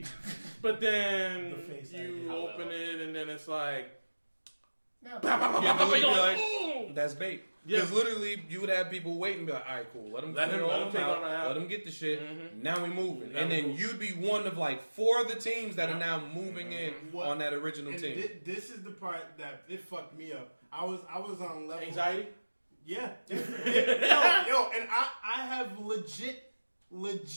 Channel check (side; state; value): both; inverted; correlation -1.00